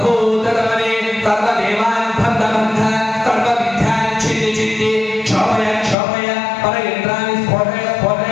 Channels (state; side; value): drops out; right; at 6.0 s